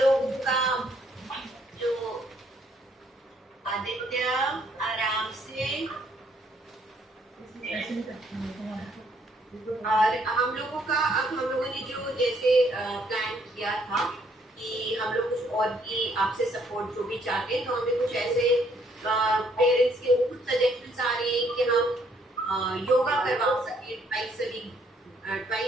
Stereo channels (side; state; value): both; normal; correlation 0.67